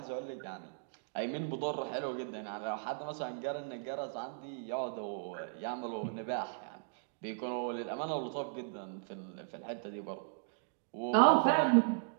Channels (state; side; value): silent; left; digital silence